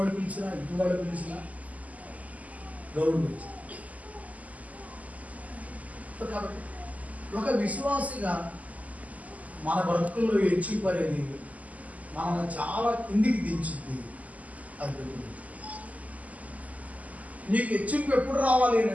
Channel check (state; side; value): late; left; 0.075 ms